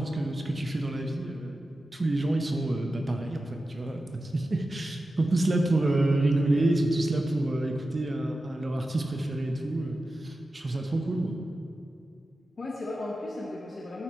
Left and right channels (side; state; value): both; normal; correlation 0.93